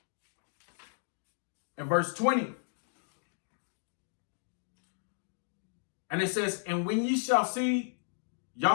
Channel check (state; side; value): silent; right; digital silence